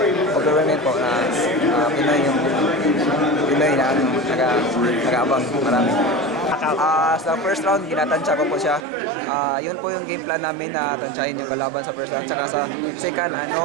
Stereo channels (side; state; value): left; drops out; at 8.8 s